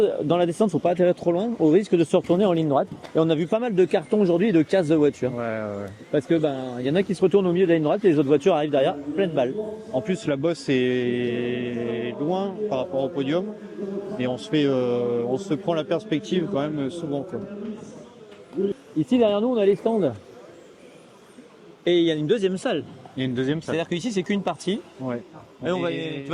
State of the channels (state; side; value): identical; both; correlation 1.00